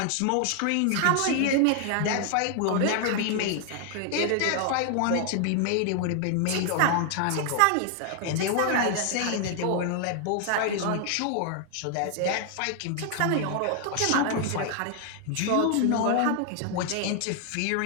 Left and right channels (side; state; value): both; different; correlation 0.00